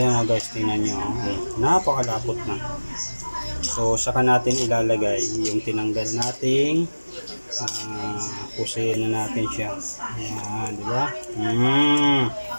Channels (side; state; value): both; inverted; correlation -1.00